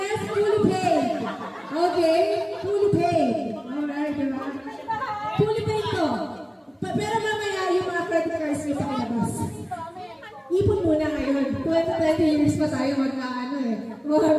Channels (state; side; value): identical; both; correlation 1.00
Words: fully paid. Okay? Fully paid. Alright, diba? Fully paid to. Pero mamaya yung mga credit cards nyo pakilabas. Ipon muna ngayon. 20 years pa tayo